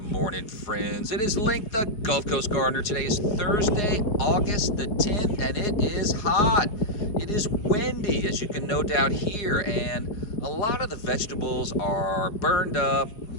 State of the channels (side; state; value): right; late; 4.8 ms